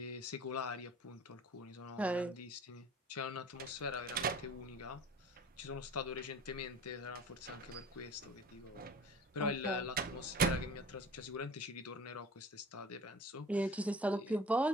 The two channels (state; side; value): normal; both; correlation 0.42